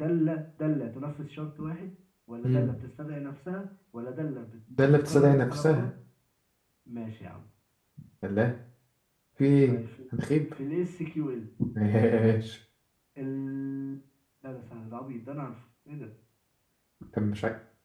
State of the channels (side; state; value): both; identical; correlation 1.00